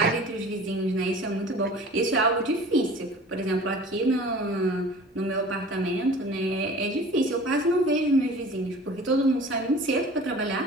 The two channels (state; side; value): normal; both; correlation 0.43